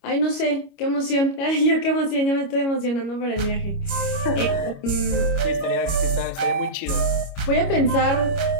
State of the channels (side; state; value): right; late; 25 ms